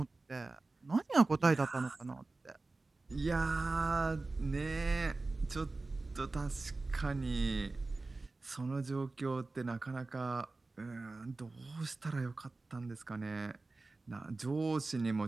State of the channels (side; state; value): left; quieter; 3.4 dB